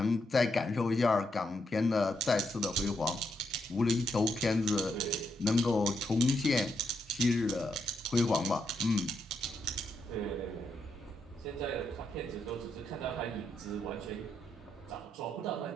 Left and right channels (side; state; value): both; normal; correlation 0.80